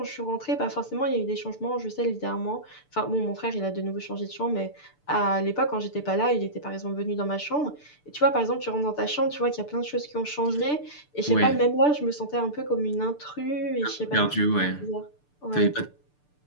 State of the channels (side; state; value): right; late; 6.8 ms